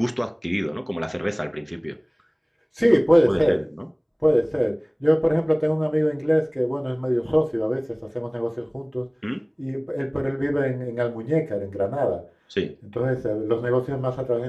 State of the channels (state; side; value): identical; both; correlation 1.00